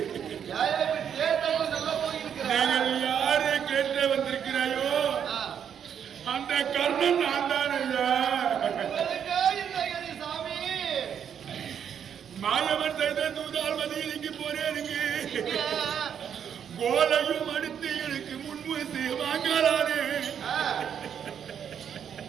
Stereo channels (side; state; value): left; quieter; 8.3 dB